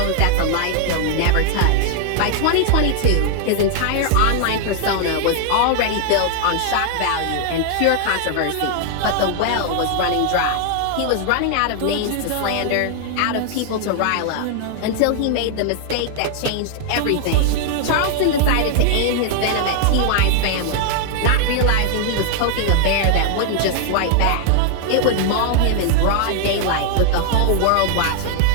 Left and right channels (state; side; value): different; both; correlation 0.00